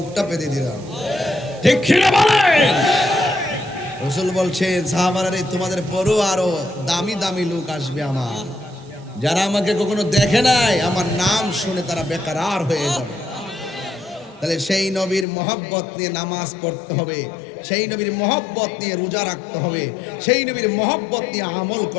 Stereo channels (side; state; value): right; drops out; at 15.2 s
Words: পেতে দিতাম ঠিক কিনা বলেন রাসূল বলছেন সাহাবারা তোমাদের পরও আরো দামি দামি লোক আসবে আমার যারা আমাকে কখনো দেখে নাই আমার নাম শুনে তারা বেকারার হয়ে যাবে তাহলে সেই নবীর মহব্বত নিয়ে নামাজ পড়তে হবে সেই নবীর মহব্বত নিয়ে রোজা রাখতে হবে সেই নবীর মহব্বত নিয়ে আমল